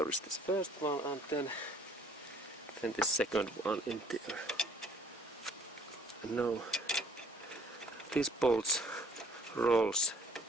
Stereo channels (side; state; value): both; normal; correlation 0.58